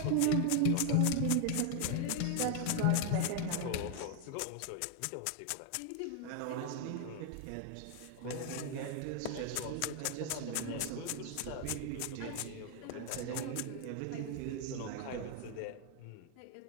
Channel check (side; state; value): both; different; correlation 0.00